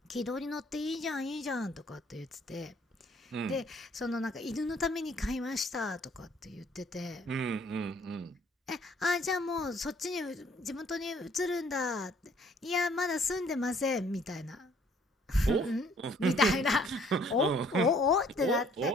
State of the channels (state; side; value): normal; both; correlation 0.60